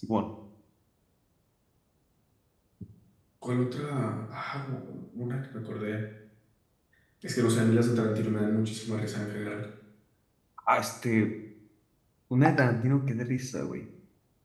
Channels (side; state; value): both; identical; correlation 1.00